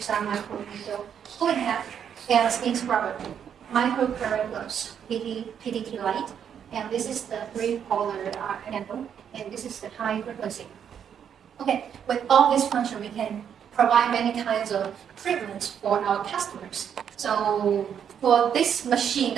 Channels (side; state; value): left; quieter; 8.3 dB